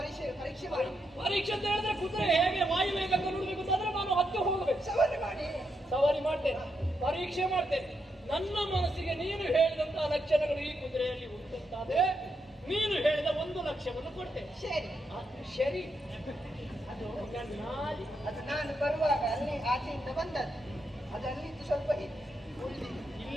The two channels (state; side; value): normal; both; correlation 0.82